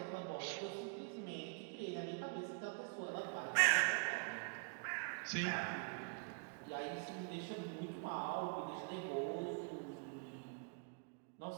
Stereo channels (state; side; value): quieter; left; 38.3 dB